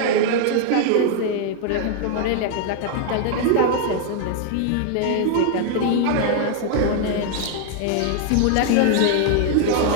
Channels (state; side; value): different; both; correlation 0.00